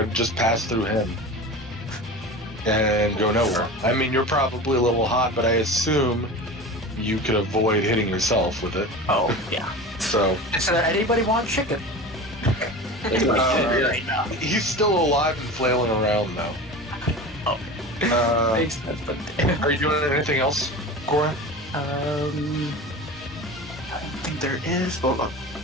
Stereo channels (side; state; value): both; normal; correlation 0.32